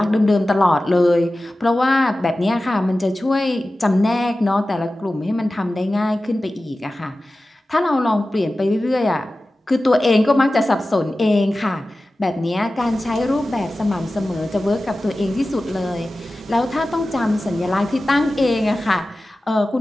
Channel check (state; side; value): normal; both; correlation 0.95